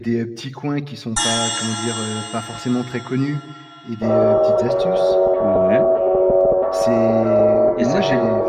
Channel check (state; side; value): identical; both; correlation 1.00